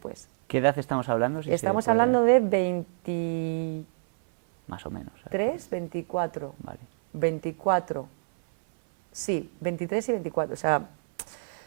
¿Qué edad estamos hablando? Si se Estamos puede- hablando de 23, Más o menos. ¿sabes? 24, Vale. 24, sí, 23 y 24. O sea,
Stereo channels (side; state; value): left; silent; 59 dB below the other